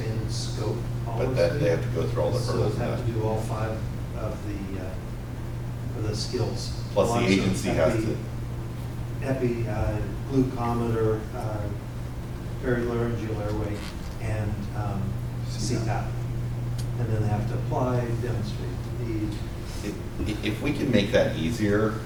scope policy. But that, they have to go through all the hurdles So and have that. to do all 5 of the skills. Plus the Naloxone, agency has to. Epi, glucometer, perilaryngeal airway, and CPAP. And then they have to apply, demonstrate the need. If we can make that easier,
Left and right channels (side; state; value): both; identical; correlation 1.00